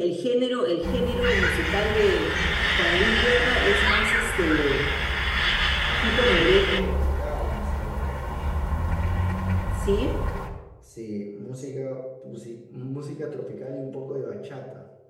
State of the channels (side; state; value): both; identical; correlation 1.00